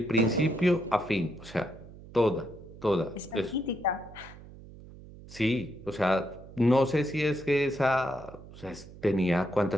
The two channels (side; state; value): right; noise; hum, 18 dB below the sound